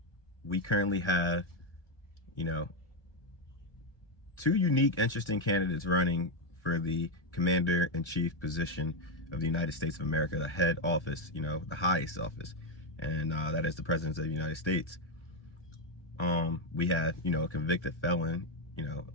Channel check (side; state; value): right; late; 1.4 ms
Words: we currently have, you know, two unique, interesting candidates running for the commander-in-chief position of the United States of America, the head office, the highest office, and that is the President of the United States. We have, a convicted felon,